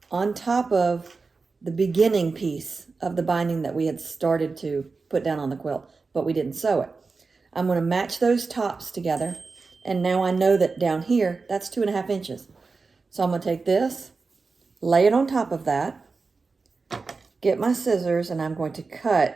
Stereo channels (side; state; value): left; quieter; 4.3 dB